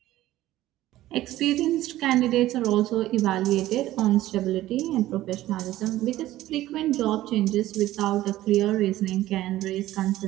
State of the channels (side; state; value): left; quieter; 15.2 dB